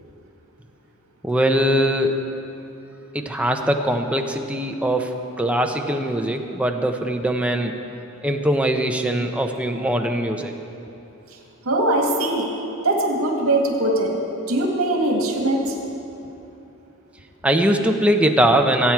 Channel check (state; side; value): normal; both; correlation 0.50